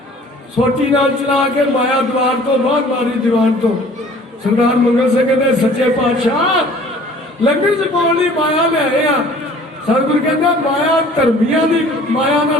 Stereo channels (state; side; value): normal; both; correlation 0.51